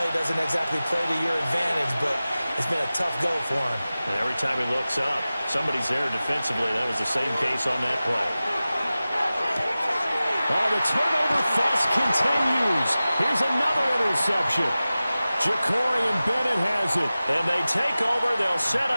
doesn't exactly play to your advantage, but it's been a tough go for him. And every time he looks up, somebody's there defensively. That was the same case on that play. Oh, the turnover fest continues. Here's another interception. Ja'Cory Bennett has it. And they take over. They'll set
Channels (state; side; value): inverted; both; correlation -0.96